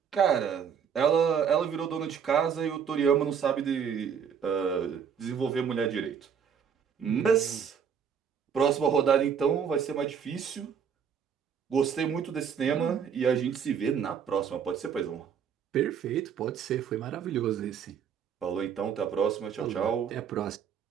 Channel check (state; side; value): quieter; left; 7.4 dB